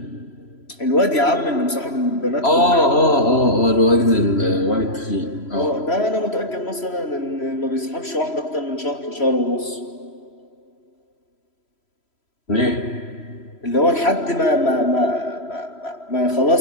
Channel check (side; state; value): right; late; 3.0 ms